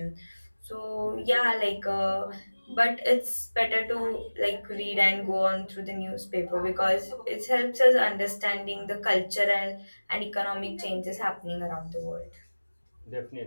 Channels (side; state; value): both; inverted; correlation -1.00